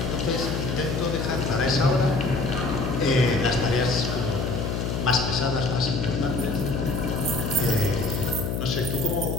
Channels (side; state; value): left; noise; hum, 1 dB below the sound